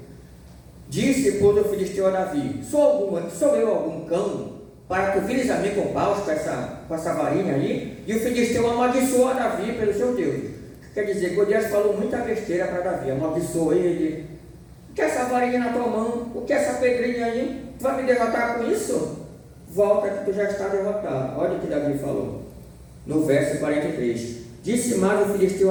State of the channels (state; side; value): identical; both; correlation 1.00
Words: Disse, pois, o filisteu a Davi, sou eu algum cão, para tu vires a mim com paus, com essa varinha aí? E o filisteu amaldiçoou a Davi pelo seu Deus. Quer dizer, Golias falou muita besteira para Davi, amaldiçoou ele. O que é essa varinha na tua mão? O que é essa pedrinha aí? Tu vai me derrotar com isso? Volta que tu já está derrotado. Olha o que Davi falou. No verso 43. Disse mais o filisteu